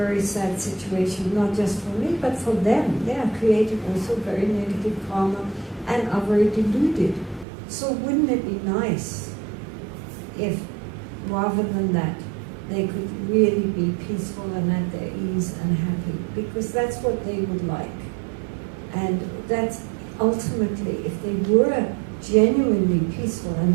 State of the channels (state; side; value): drops out; left; at 7.5 s